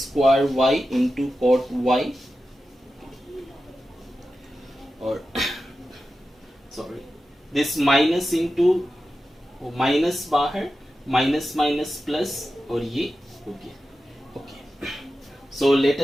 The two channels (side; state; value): both; normal; correlation 0.92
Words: y into cot y. और sorry, this minus into minus बाहर, माइनस माइनस प्लस, और ये हो गया. So let